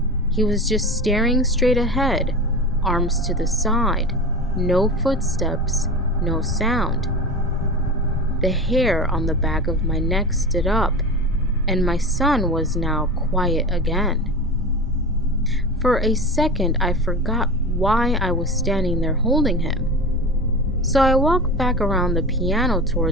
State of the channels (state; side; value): normal; both; correlation 0.29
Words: He was just staring straight ahead, arms to the side, no footsteps, no sound. The hair on the back of my neck stood up, and my son was now quiet again. For a second, I forgot why I was standing there holding him. So I walked back around the piano